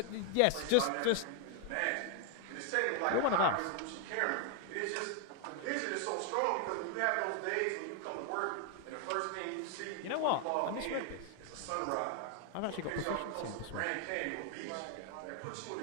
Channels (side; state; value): both; different; correlation 0.01